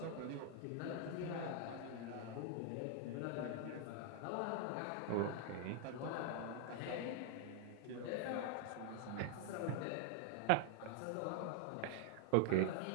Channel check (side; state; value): both; different; correlation 0.00